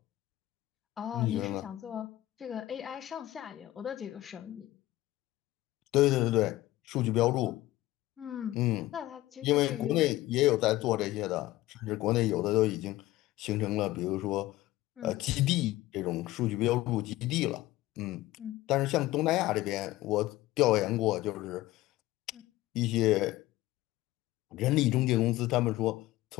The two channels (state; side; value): quieter; right; 16.8 dB